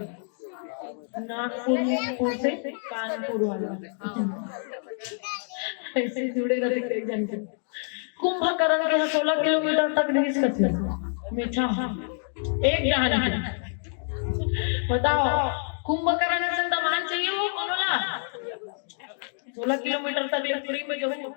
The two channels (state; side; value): silent; right; 60 dB below the other